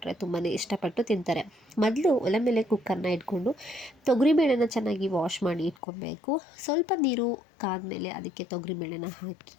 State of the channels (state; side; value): drops out; right; at 5.8 s